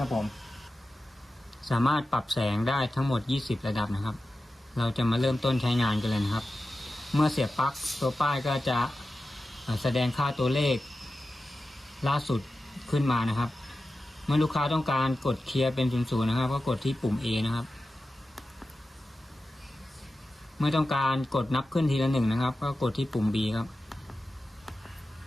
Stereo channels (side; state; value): both; normal; correlation 0.93